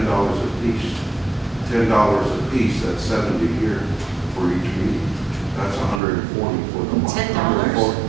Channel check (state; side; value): drops out; left; at 6.0 s